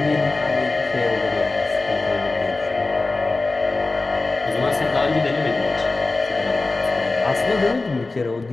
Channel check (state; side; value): quieter; right; 3.4 dB